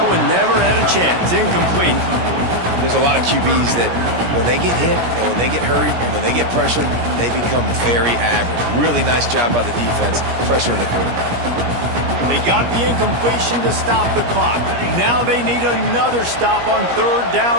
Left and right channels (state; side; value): late; left; 17 ms